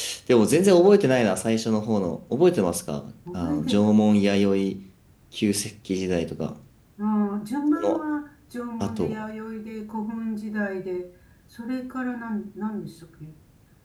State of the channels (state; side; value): identical; both; correlation 1.00